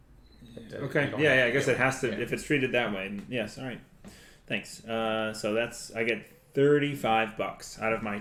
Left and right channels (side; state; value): both; identical; correlation 1.00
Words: Okay. Yeah. I guess it has to if it's treated that way. Yes. All right. Thanks. So I get $35 out of my